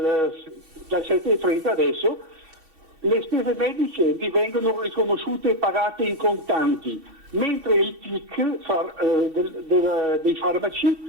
7,30 adesso. Le spese mediche vi vengono riconosciute e pagate in contanti, mentre il TIC dei farmaci,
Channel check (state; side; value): late; left; 6.2 ms